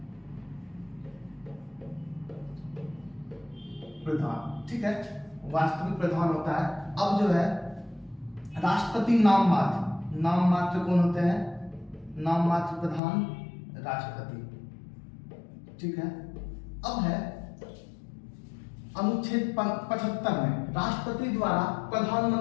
ठीक है, वास्तविक प्रधान होता है। अब जो है राष्ट्रपति नाम मात्र कौन होते हैं? नाम मात्र प्रधान राष्ट्रपति। ठीक है, अब है अनुच्छेद 75 में राष्ट्रपति द्वारा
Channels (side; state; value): right; drops out; at 13.0 s